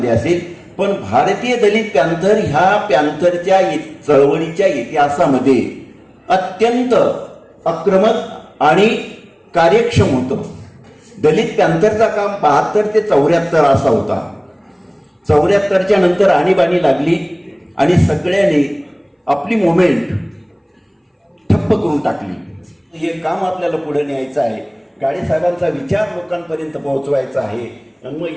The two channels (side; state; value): both; identical; correlation 1.00